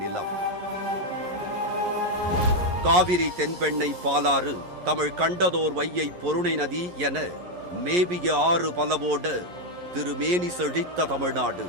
நிலம். காவிரி, தென்பெண்ணை, பாலாறு, தமிழ் கண்டதோர் வையை, பொருணை நதி என மேவிய ஆறு பலவோட திருமேனி செழித்த தமிழ்நாடு.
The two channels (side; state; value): left; late; 11 ms